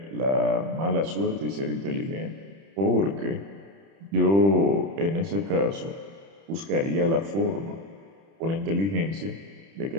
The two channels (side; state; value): left; late; 30 ms